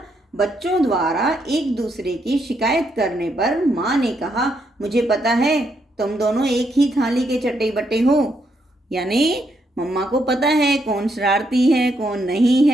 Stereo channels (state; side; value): normal; both; correlation 0.77